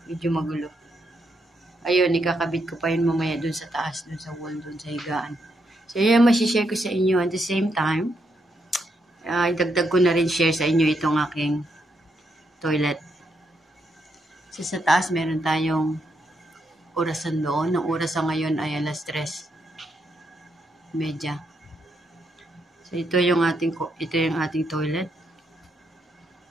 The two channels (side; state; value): both; normal; correlation 0.79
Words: magulo. Ayun, ikakabit ko pa yun mamaya dun sa taas, dun sa wall, dun sa higaan. So, yan masishare ko sa inyo. At the same time, idagdag ko na rin share sa inyo itong aking toilet. So, sa taas, meron tayong orasan doon. Ang orasan ngayon ay 3:30. So, ito yung ating toilet.